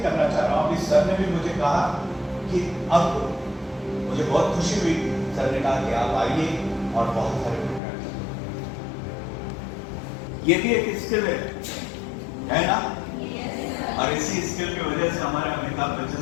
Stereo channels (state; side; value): drops out; right; at 7.8 s